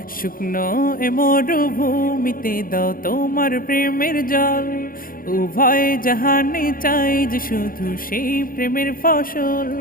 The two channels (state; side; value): late; right; 0.41 ms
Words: শুকনো এ মরুভূমিতে দাও তোমার প্রেমের জল উভয় জাহানে চাই যে শুধু সেই প্রেমের ফসল